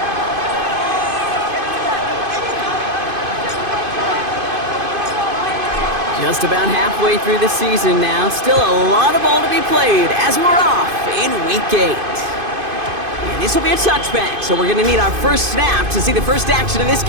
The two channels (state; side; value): late; left; 2.5 ms